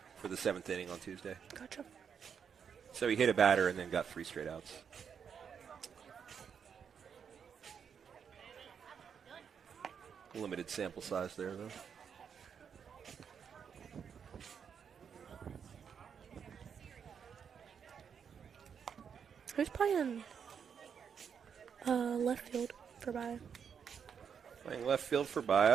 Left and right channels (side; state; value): left; quieter; 7.1 dB